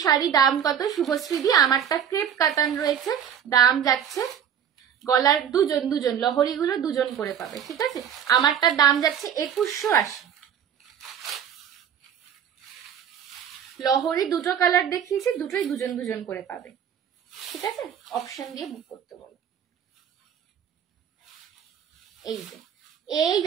শাড়ি, দাম কত শুভশ্রীদি? আমারটা ক্রেপ কাতান রয়েছে, দাম যাচ্ছে, গলার দুজন লহরি গুলো দুজন করে পাবে, ঠিক আছে। আমারটার দাম যাচ্ছে 2180। লহরি দুটো কালার দেখিয়েছি, দুটোই দুজন করে পাবে, ঠিক আছে। অপশন দিয়ে বুক করতে বলো। এই যে এই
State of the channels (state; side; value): quieter; left; 8.6 dB